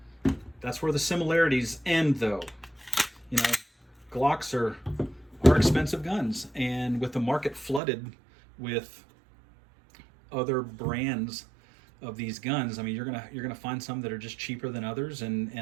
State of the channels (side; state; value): left; drops out; at 7.8 s